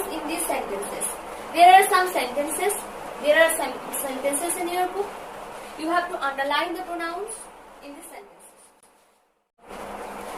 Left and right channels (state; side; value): identical; both; correlation 1.00